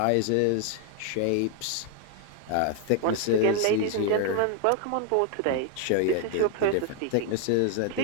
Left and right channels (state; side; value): different; both; correlation 0.00